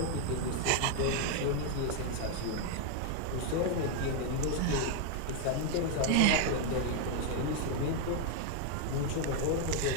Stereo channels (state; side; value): different; both; correlation 0.00